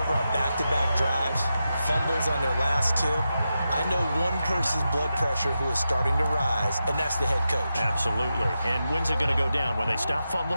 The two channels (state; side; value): inverted; both; correlation -0.89